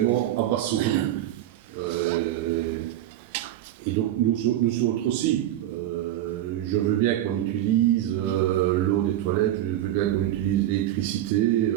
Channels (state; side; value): quieter; left; 12.9 dB